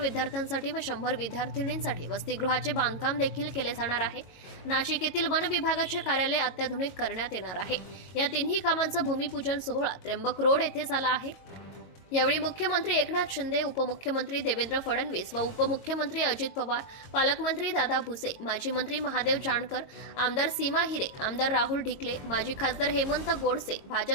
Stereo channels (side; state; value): right; late; 22 ms